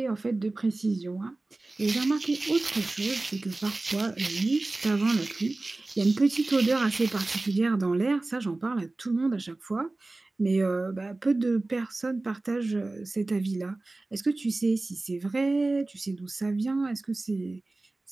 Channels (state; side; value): quieter; left; 3.1 dB